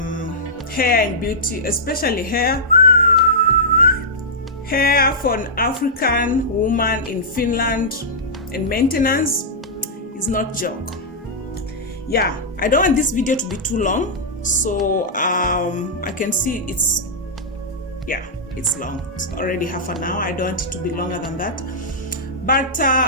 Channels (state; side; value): normal; both; correlation -0.12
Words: hair and beauty, especially hair for an African woman in Finland, and maintenance is not joke. Yeah, I don't want this video to be too long, so I can see it's long. It's already half an hour. I don't want it to be longer than that. But